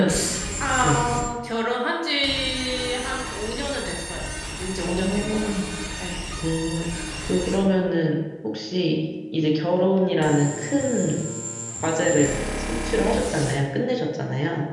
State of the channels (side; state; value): both; identical; correlation 1.00